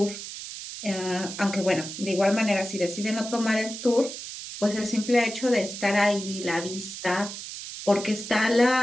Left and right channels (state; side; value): noise; right; hiss, 10 dB below the sound